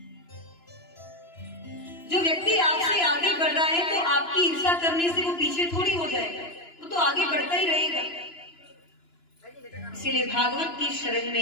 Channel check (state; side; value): late; right; 2.9 ms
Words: जो व्यक्ति आपसे आगे बढ़ रहा है तो आपकी ईर्ष्या करने से वो पीछे थोड़ी हो जाएगा, वो तो आगे बढ़ता ही रहेगा। इसलिए भागवत की शरण